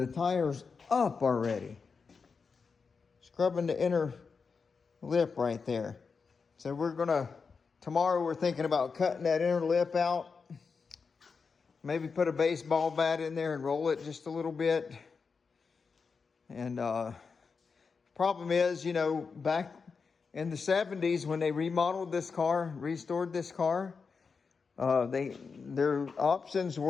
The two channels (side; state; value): right; quieter; 5.2 dB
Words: tires up already. Scrubbing the inner lip right there. So tomorrow we're thinking about cutting that inner lip out. Maybe put a baseball bat in there and roll it just a little bit. And problem is, you know, back in the 70s when they remodeled this car, restored this car, their options